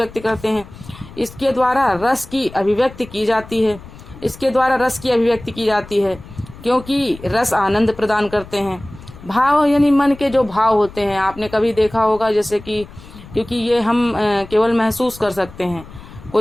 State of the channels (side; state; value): left; noise; rumble, 18 dB below the sound